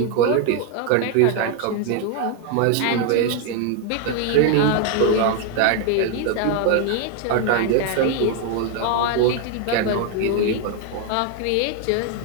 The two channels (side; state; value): both; different; correlation 0.01